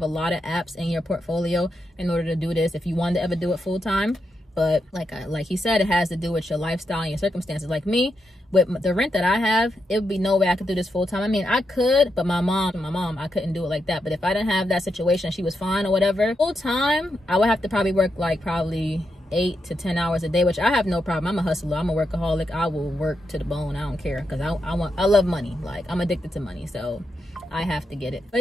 a lot of apps in your portfolio in order to do this if you want to ever do it full time. But like he said, it has to do with your lifestyle and your circumstances. Like me, with the rent that I have, it would be no way I could do this full time. I mean, I could, but my mom, I couldn't do it like that. But if I didn't have that situation, she was fine or whatever, full time, I would have to probably work like probably 8 to 10 hours a day, which I have no problem. I'm a hustler. I'm a workaholic. I will work to the bone. I don't care, because I love money. Like, I'm addicted to money, so I have to get it.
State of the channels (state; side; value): normal; both; correlation 0.84